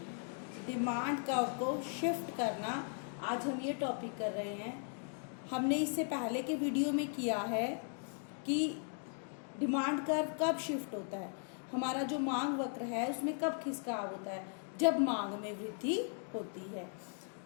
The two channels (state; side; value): silent; right; 53 dB below the other